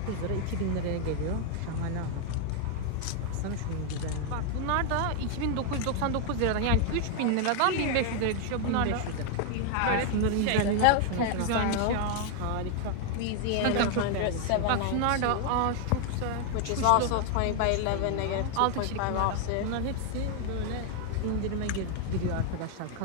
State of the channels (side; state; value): both; different; correlation 0.00